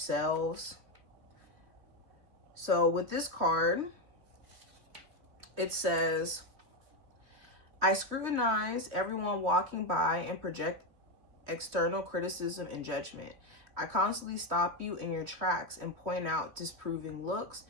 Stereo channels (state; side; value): late; left; 3.2 ms